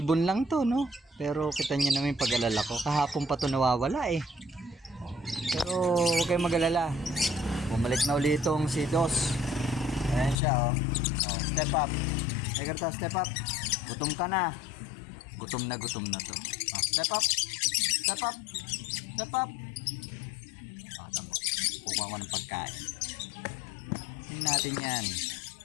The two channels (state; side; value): drops out; right; at 10.4 s